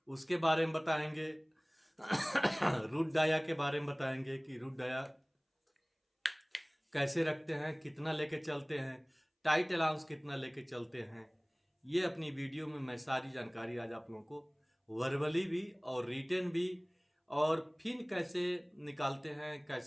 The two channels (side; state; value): both; identical; correlation 1.00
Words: उसके बारे में बताएंगे। रूट डाया के बारे में बताएंगे कि रूट डाया कैसे रखते हैं, कितना लेके चलते हैं, टाइट अलाउंस कितना लेके चलते हैं। ये अपनी वीडियो में मैं सारी जानकारी आज आप लोगों को वर्बली भी और रिटेन भी, और फिन कैसे निकालते हैं,